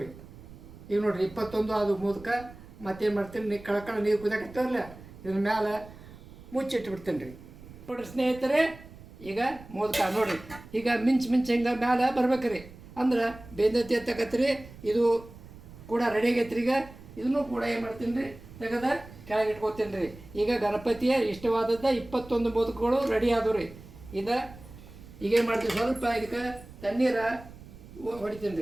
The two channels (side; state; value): right; noise; rumble, 18 dB below the sound